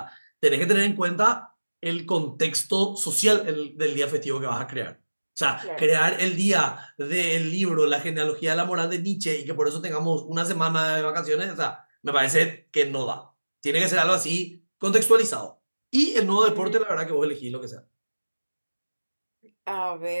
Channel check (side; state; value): both; inverted; correlation -1.00